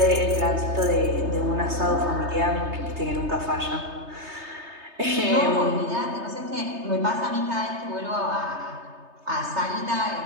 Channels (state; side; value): late; left; 3.3 ms